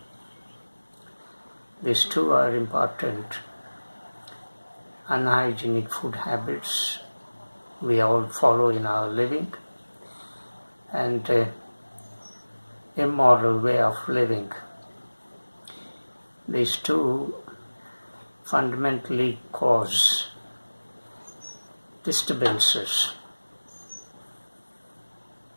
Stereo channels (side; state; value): both; inverted; correlation -1.00